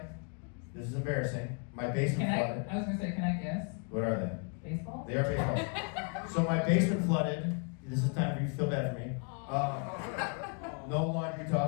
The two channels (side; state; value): right; quieter; 37.3 dB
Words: This is embarrassing. My basement Can flooded. I was gonna say, can I guess? What are they? Baseball? They are baseball. So my basement flooded. This is time for you to feel bad for me. No laundry